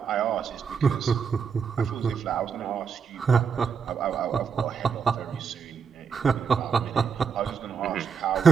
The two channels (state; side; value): quieter; left; 6.3 dB